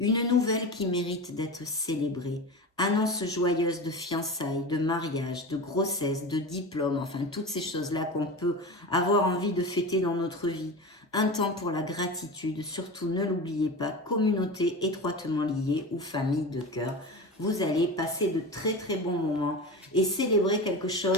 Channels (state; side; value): normal; both; correlation 0.27